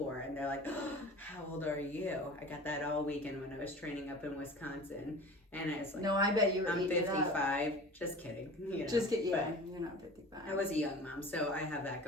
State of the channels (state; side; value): normal; both; correlation 0.39